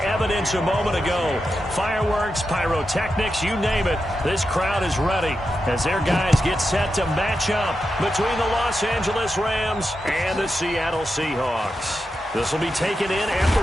a moment ago. Fireworks, pyrotechnics, you name it. This crowd is ready as their guys get set to match up between the Los Angeles Rams and the Seattle Seahawks. This will be taken in at the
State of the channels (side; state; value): both; normal; correlation 0.88